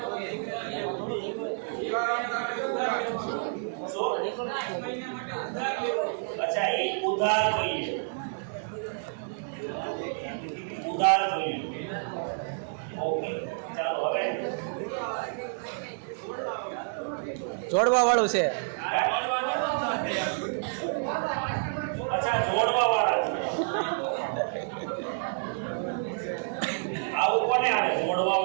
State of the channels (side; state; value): left; silent; digital silence